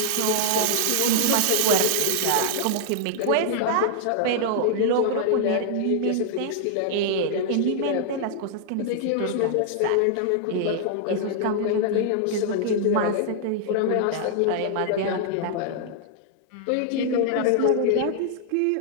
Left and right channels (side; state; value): both; different; correlation -0.01